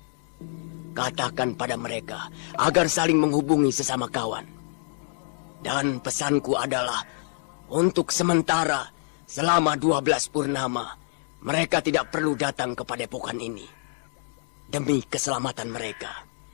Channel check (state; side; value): silent; right; 60 dB below the other